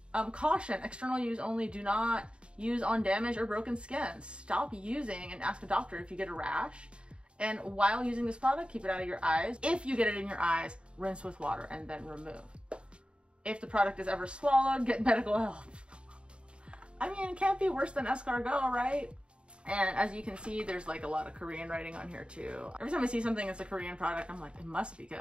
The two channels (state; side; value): late; left; 0.055 ms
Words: Caution, external use only. Do not use on damaged or broken skin. Stop using and ask a doctor if you get a rash. And while using this product, keep it out of your eyes. If you get it in your eyes, rinse with water and then remove. If the product is ever swallowed, get medical help. I mean, it can't be worse than escargot, right? And as you can see, there's like a lot of Korean writing on here too. Every time I see something that's a Korean product, I'm like, it must be